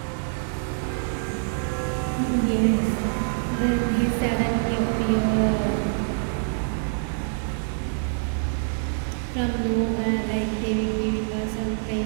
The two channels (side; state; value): left; silent; digital silence